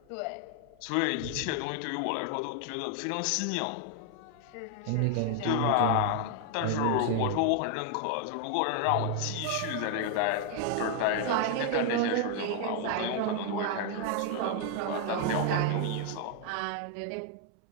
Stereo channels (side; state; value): both; different; correlation 0.00